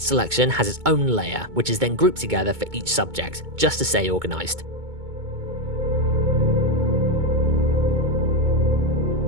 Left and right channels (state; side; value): late; left; 2.2 ms